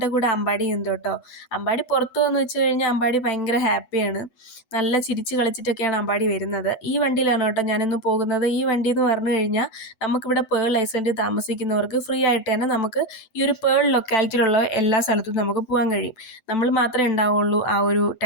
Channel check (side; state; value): right; late; 7.9 ms